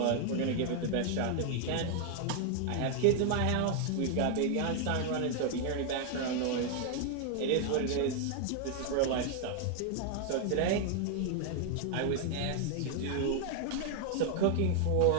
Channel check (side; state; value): both; different; correlation 0.00